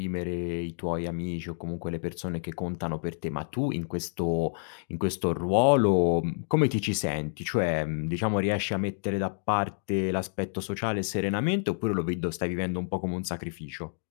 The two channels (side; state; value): right; silent; digital silence